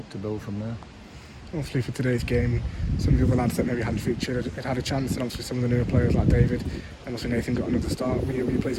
to build from there. Obviously for today's game, some of the other lads that maybe hadn't featured had a chance, and obviously some of the newer players like David, and also Nathan got another start. Were you pleased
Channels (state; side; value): identical; both; correlation 1.00